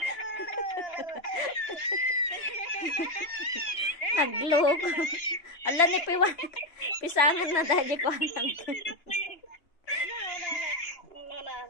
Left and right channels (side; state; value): right; late; 2.8 ms